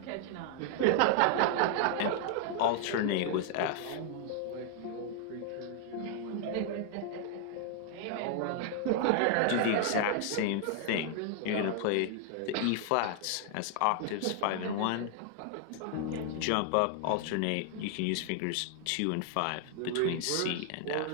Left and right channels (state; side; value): different; both; correlation 0.00